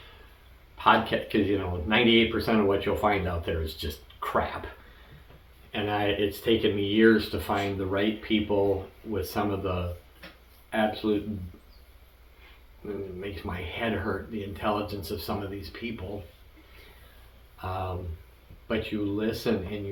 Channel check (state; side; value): identical; both; correlation 1.00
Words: podcast, because you know 98% of what you'll find out there is just crap. And it's taken me years to find the right people with some of the absolute, it makes my head hurt, the intelligence of some of these people. But you listen and